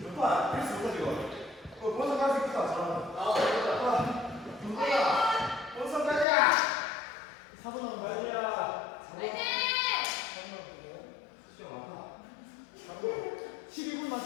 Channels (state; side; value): drops out; right; at 6.2 s